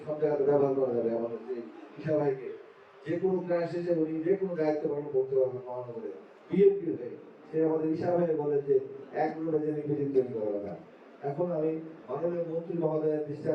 সব জায়গাতে ব্যবহার করা যাবে। আমাদের যে ঈশা ভাইকে যে কোনো ক্রাইসিসে উনি যে কোনো দায়িত্ব পালন করতে পারবেন মহানগরে বিএনপি হয়ে। সে আমাদের ঈশা ভাই বলে যে 1 নম্বরে যে নিবেদিত তৈরি করা না। এখন আমি মাননীয় মন্ত্রী মহোদয়ের দৃষ্টি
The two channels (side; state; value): both; identical; correlation 1.00